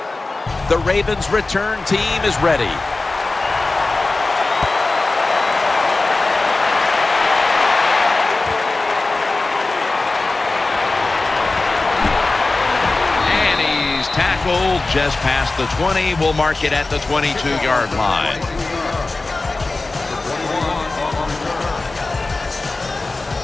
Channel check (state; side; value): quieter; right; 3.3 dB